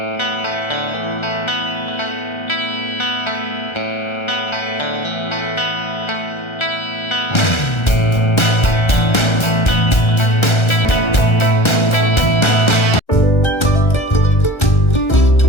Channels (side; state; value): right; late; 1.3 ms